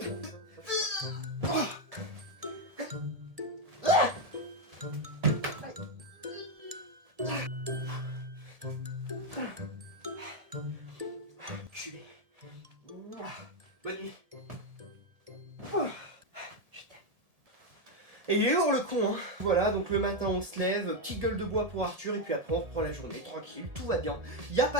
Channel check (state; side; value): late; left; 1.8 ms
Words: Culé. Bonne nuit. Je t'aime. Et il est lourd le con, hein. Voilà, donc le matin on se lève, petite gueule de bois pour Arthur, et puis après on reprend la journée, tranquille, tout va bien. Y a